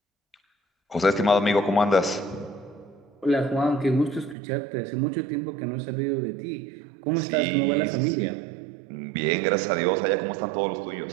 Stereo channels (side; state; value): left; drops out; at 4.4 s